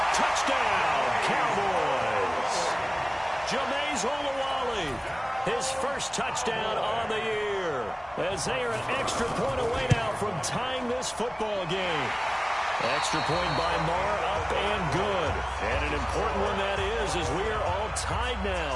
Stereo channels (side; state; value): both; identical; correlation 1.00